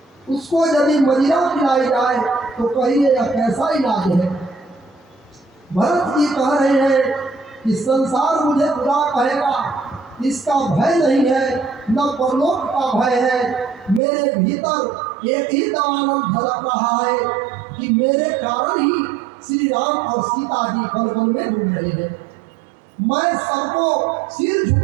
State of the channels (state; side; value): drops out; left; at 14.0 s